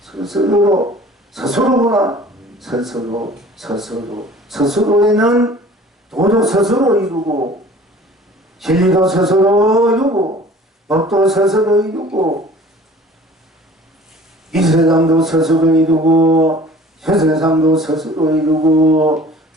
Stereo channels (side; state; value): both; normal; correlation 0.47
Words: 스스로에는 도도 스스로 이루고 진리도 스스로 이루고 법도 스스로 이루고 이 세상도 스스로 이루고 저 세상도 스스로 이루고